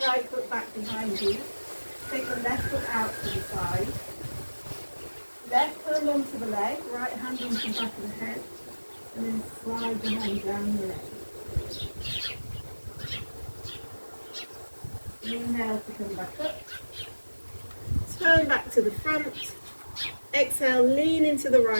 right foot back behind you. Take the left foot out to the side. Left hand onto the leg, right hand onto the back of the head. And then slide the hand down the leg. Inhale to come back up. Turn back to the front. Exhale, lean into the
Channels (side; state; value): both; inverted; correlation -1.00